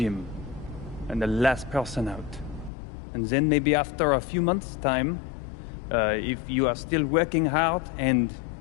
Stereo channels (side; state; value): right; drops out; at 2.7 s